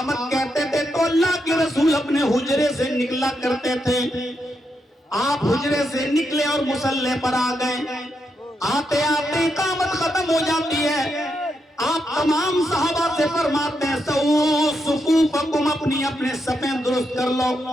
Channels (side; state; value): both; normal; correlation 0.83